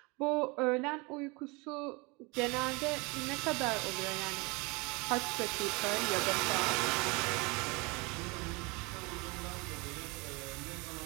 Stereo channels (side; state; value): left; quieter; 27.6 dB